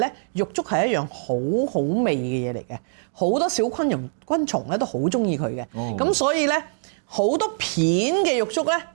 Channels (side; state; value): left; silent; digital silence